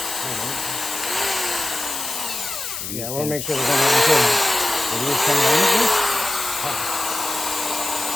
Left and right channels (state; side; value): noise; left; hiss, 6 dB below the sound